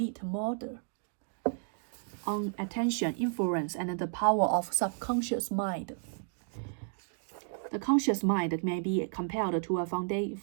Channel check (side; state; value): left; silent; 56 dB below the other